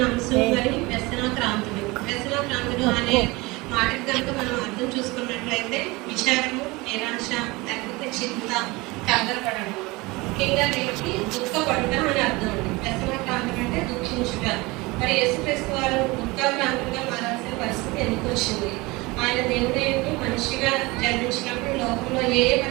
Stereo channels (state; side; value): quieter; left; 23.2 dB